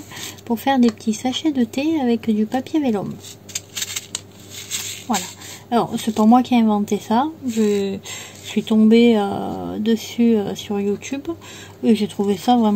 pour faire des petits sachets de thé avec du papier vélum. Voilà, alors c'est pas moi qui ai inventé ça, je suis tombée dessus sur YouTube et j'ai trouvé ça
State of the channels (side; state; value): both; identical; correlation 1.00